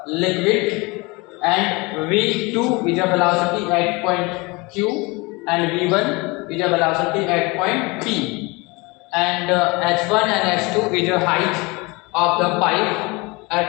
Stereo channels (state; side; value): quieter; right; 25.9 dB